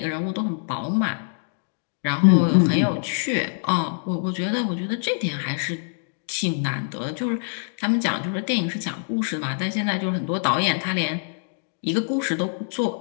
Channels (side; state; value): right; silent; digital silence